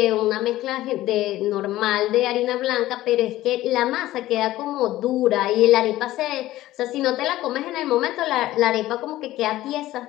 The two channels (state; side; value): quieter; right; 15.6 dB